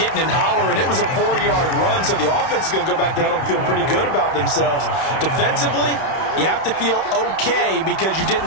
and hollering, it was a 4-yard run, so the offense is going to go back there and feel pretty good about themselves. Defensively, you have to feel okay because you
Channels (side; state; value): right; late; 31 ms